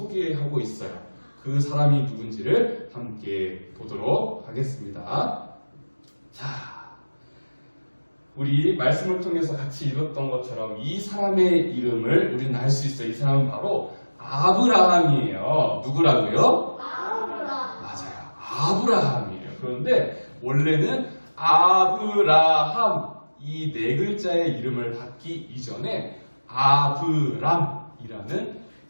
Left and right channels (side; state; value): both; inverted; correlation -1.00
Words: 있어요. 그 사람이 누군지를 함께 보도록 하겠습니다. 자, 우리 말씀을 통해서 같이 읽었던 것처럼 이 사람의 이름을 우리는 알 수 있어요. 이 사람은 바로 아브라함이에요. 누구라고요? 맞아요. 아브라함이에요. 그런데 원래는 아브라함 이 네 글자의 이름을 받기 이전에 아브람이라는